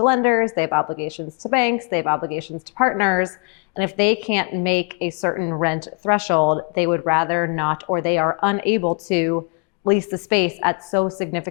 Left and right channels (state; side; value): quieter; right; 36.4 dB